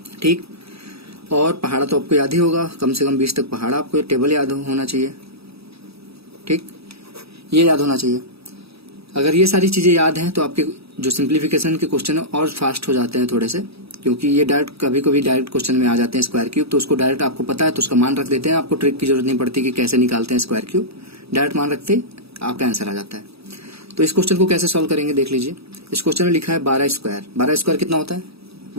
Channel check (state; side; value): late; left; 0.77 ms